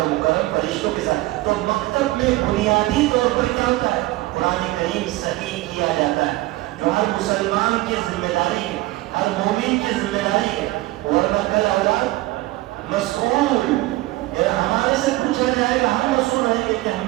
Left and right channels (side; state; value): left; quieter; 18.5 dB